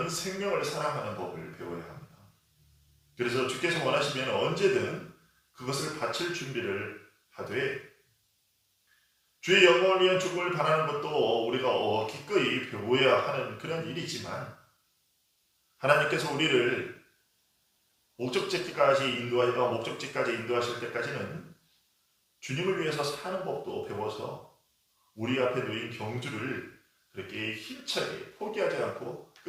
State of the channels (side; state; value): both; identical; correlation 1.00